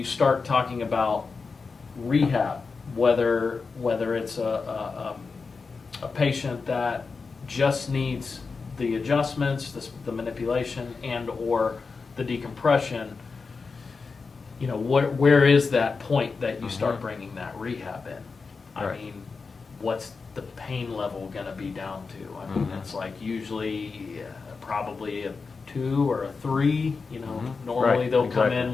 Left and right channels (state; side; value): quieter; right; 4.6 dB